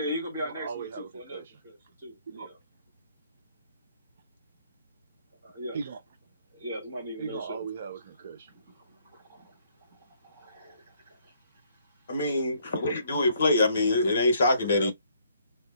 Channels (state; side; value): inverted; both; correlation -0.67